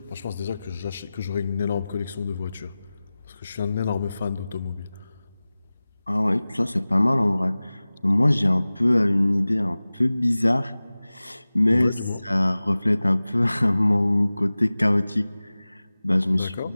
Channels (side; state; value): both; inverted; correlation -0.97